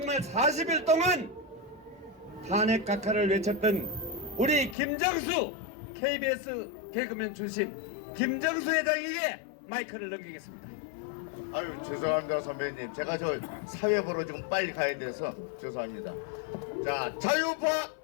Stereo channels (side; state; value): right; drops out; at 4.8 s